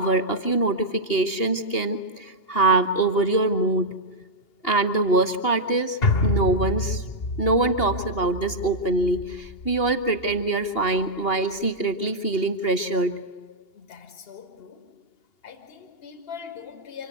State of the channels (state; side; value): late; right; 2.8 ms